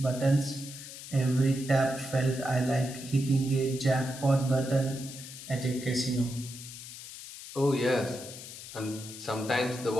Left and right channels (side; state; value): left; noise; hiss, 12 dB below the sound